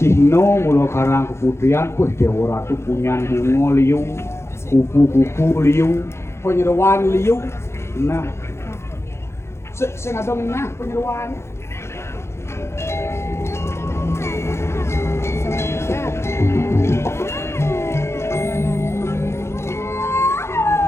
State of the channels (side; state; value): right; late; 0.13 ms